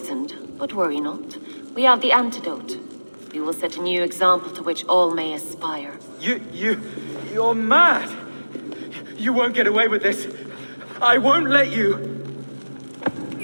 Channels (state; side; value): inverted; both; correlation -1.00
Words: but worry not. We have the antidote. We will set a new example to which all may aspire. You're mad. You won't get away with this. I won't let you.